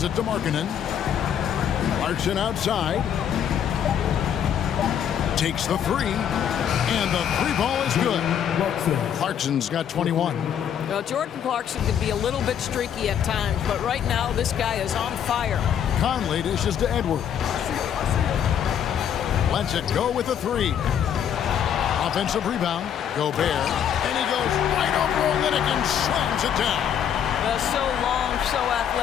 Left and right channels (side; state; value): right; quieter; 9.0 dB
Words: it to Markkanen. Clarkson outside. Takes the 3. And the 3 ball is good. Clarkson's got 21. Well, Jordan Clarkson can be a little bit streaky at times, but right now this guy is on fire. Conley dishes to Edwards. Lets it go with the 3. Offensive rebound. Gobert. And he goes right over Olynyk and slams it down. So long, so